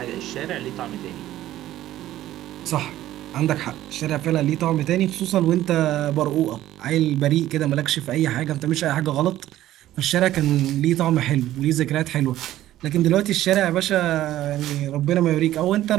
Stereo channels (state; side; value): quieter; left; 13.9 dB